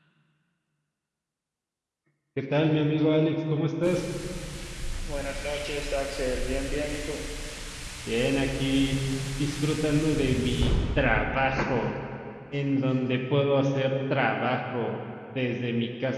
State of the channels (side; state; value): both; identical; correlation 1.00